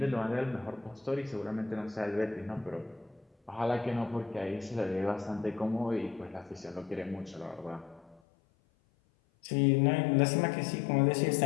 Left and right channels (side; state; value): right; drops out; at 8.2 s